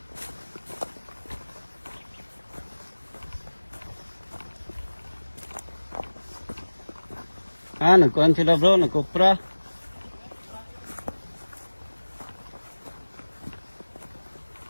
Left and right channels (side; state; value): both; inverted; correlation -1.00